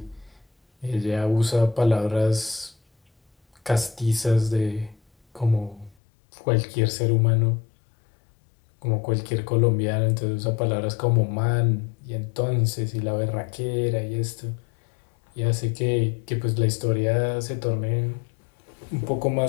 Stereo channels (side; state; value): right; drops out; at 6.0 s